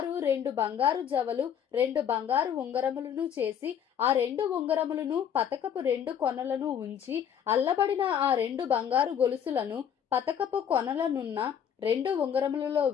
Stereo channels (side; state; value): right; quieter; 8.6 dB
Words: 2 బంగారు జవలు 2 బంగారు ఉంగరములను చేసి ఆ 2 ఉంగరములను పతకపు 2 కొనలను ఉంచి అల్లబడిన ఆ 2 బంగారు గొలుసులను పతకపు కొనలనున్న 2 ఉంగరములలో